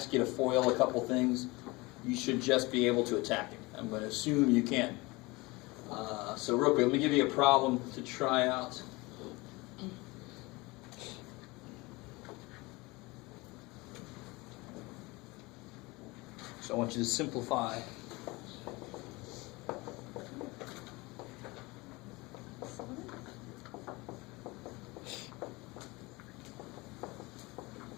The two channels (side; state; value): right; quieter; 23.5 dB